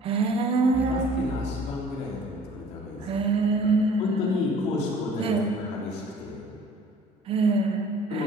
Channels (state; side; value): normal; both; correlation 0.51